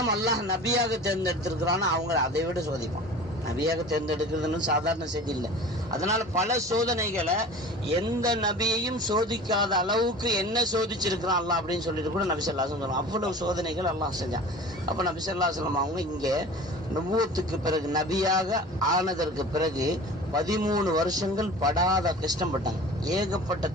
அல்லாஹ் நபியாக தேர்ந்தெடுத்திருக்கிறானோ அவங்களை அதை விட சோதிப்பான். நபியாக தேர்ந்தெடுக்கிறதுன்னு சாதாரண செய்தி இல்லை. அதனால பல சோதனைகளை எந்த நபியையும் சோதிக்காத அளவுக்கு என்ன சோதிச்சிருக்கிறான் அல்லாஹ் அப்படின்னு சொல்லிட்டு கூட நபி ஸல்லல்லாஹு அலைஹி வஸல்லம் அவ்வளவு சோதனைகள் அல்லாஹ் செஞ்சான். அப்ப நபி ஸல்லல்லாஹு அலைஹி வஸல்லம் அவங்க இங்கே நுபுவத்துக்கு பிறகு நபியாக ஆனதற்கு பிறகு 13 வருஷங்கள் படாத கஷ்டப்பட்டாங்க. ஏகப்பட்ட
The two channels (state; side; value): normal; both; correlation 0.39